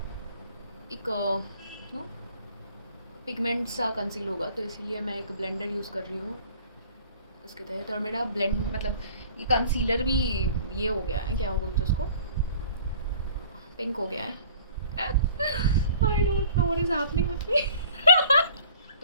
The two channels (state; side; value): inverted; both; correlation -0.50